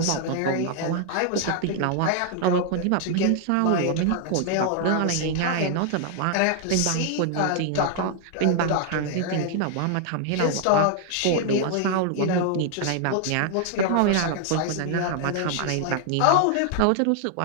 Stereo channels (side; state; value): both; different; correlation 0.00